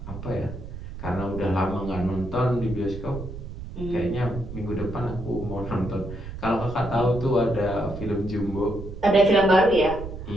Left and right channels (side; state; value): right; noise; rumble, 10 dB below the sound